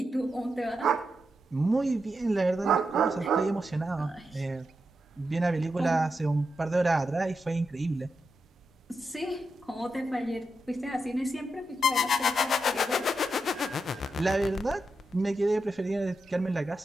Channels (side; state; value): both; normal; correlation 0.86